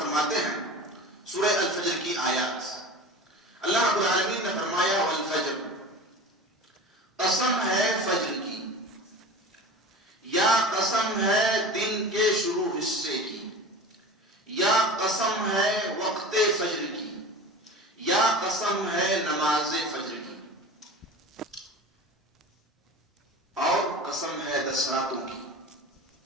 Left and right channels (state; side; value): normal; both; correlation 0.35